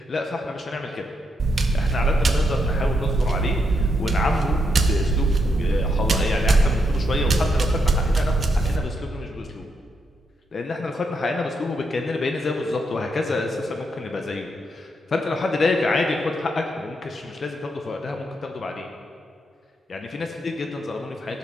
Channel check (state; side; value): normal; both; correlation 0.80